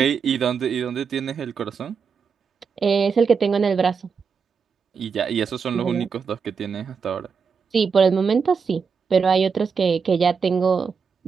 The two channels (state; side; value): quieter; left; 5.8 dB